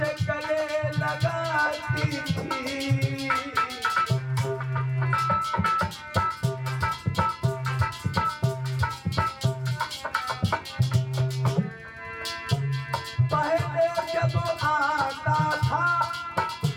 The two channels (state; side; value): identical; both; correlation 1.00